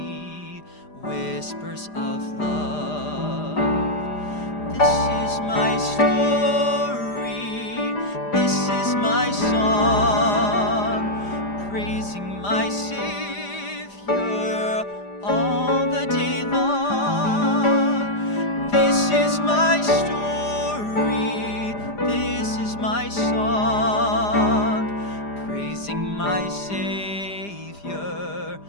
whispers of love. This is my story, this is my song, praising my Savior all the day long. This is my story, this is my song, praising my Savior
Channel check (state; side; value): late; right; 5.0 ms